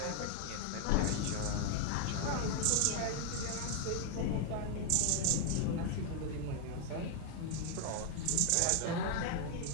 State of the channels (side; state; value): both; different; correlation 0.00